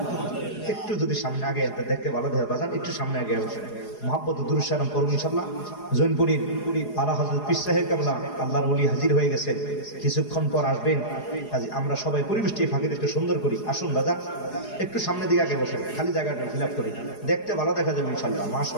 একটু যদি সামনে আগে দেখতে ভালো দেখে বাজান, একটু সামনে আগে বসে মহাব্বত দুরূদ সালাম করুন ইনশাআল্লাহ। জৈনপুরীর আলা হযরত পীর সাহেব কেবলা আল্লাহর ওলি হাজির হয়ে গেছেন, কিছুক্ষণ পর আসবেন। কাজে আমরা সবাই পরিবেশটি ফাঁকিতে একটু সুন্দর করি। আসুন দাদা, একটু সামনের দিকে আগে বসেন, খালি জায়গাটা ফিল আপ করি, দেখতে ভালো দেখা যাবে ইনশাআল্লাহ।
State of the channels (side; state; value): right; late; 4.8 ms